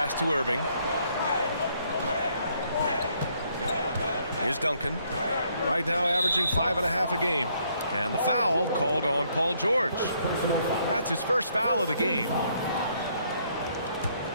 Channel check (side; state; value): both; inverted; correlation -0.69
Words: to Irving. Here's Duncan. Right now averaging 5.5 a game. And the foul called on Paul George. That's his first foul of the game.